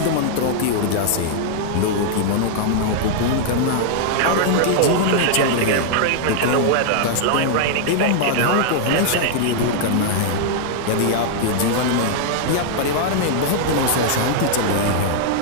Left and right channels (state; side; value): different; both; correlation -0.01